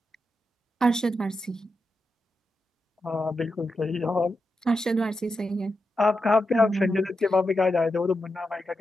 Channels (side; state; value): both; normal; correlation 0.87